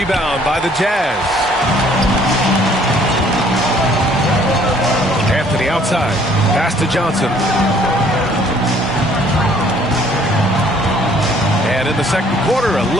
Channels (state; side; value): normal; both; correlation 0.59